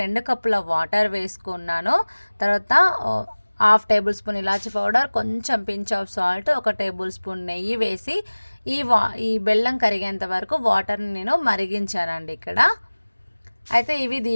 2 కప్పుల వాటర్ వేసుకున్నాను. తర్వాత హాఫ్ టేబుల్ స్పూన్ ఇలాచి పౌడర్, కొంచెం pinch of salt, 1 table spoon నెయ్యి వేసి ఈ బెల్లం కరిగేంత వరకు వాటర్ని నేను మరిగించానండి ఇక్కడ. అయితే ఇవి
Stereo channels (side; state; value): both; inverted; correlation -1.00